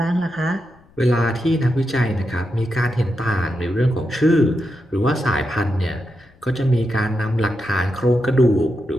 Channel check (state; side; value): noise; left; rumble, 29 dB below the sound